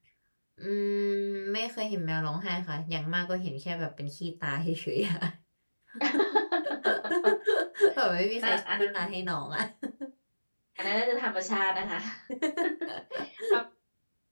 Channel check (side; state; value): both; inverted; correlation -1.00